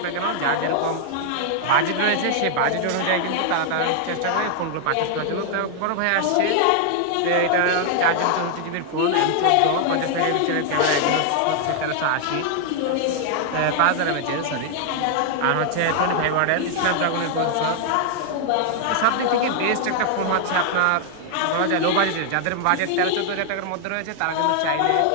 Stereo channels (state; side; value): different; both; correlation 0.00